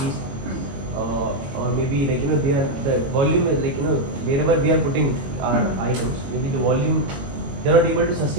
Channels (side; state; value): left; late; 21 ms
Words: or maybe the volume is wherever we are putting our items, maybe the volume, they are not able to